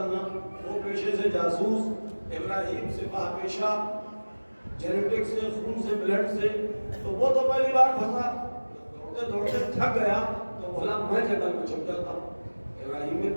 وہ پیشے سے جاسوس. ابراہیم سپاہ پیشہ, جینیٹک سے, خون سے, بلڈ سے. تو وہ تو پہلی بار پھنسا, دوڑتے دوڑتے تھک گیا تو بولا میں جنگل میں چھپ جاتا ہوں. ابراہیم بن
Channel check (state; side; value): inverted; both; correlation -1.00